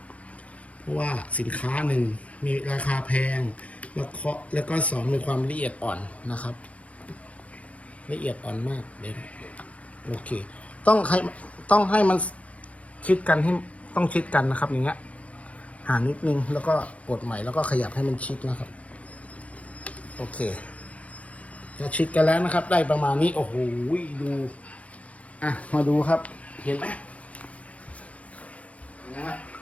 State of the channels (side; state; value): right; late; 0.066 ms